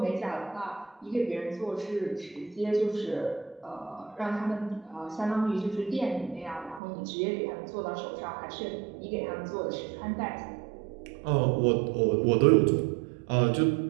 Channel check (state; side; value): drops out; left; at 6.8 s